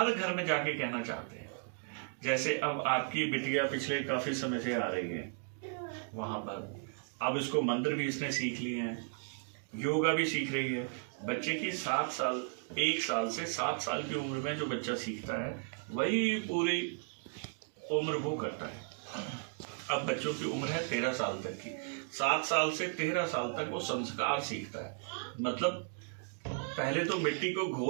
घर में जाके कहना चाहते हैं। जैसे अब आपकी बिटिया पिछले काफी समय से आ रही है वहां पर, अब इसको मंत्र भी इसने सीख लिए हैं, योगा भी सीख रही है। बच्चे की 7 साल, 1 साल से 7 साल की उम्र में जो बच्चा सीखता है वही पूरी उम्र वो करता है। अब बच्चों की उम्र है 13 साल तक की, 7 साल से 13 साल तक वो संस्कार सीखता है। मतलब पहले तो मिट्टी को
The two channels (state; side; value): silent; left; 54 dB below the other